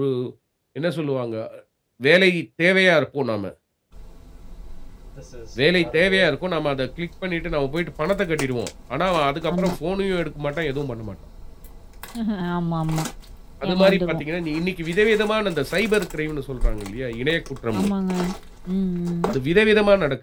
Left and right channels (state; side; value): identical; both; correlation 1.00